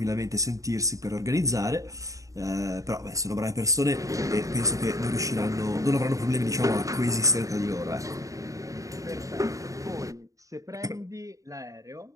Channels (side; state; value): left; late; 0.16 ms